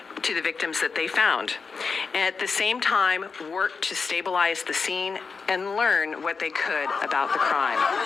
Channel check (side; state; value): right; quieter; 5.0 dB